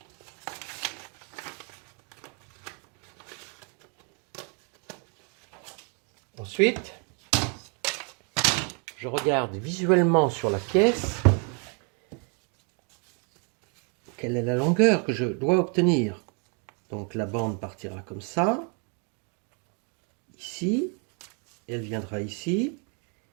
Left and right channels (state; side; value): quieter; left; 37.6 dB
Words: Ensuite, je regarde visuellement sur la pièce quelle est la longueur que je dois obtenir. Donc la bande partira comme ça, ici, elle viendra ici,